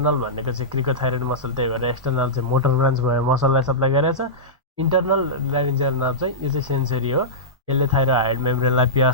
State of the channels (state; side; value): normal; both; correlation -0.14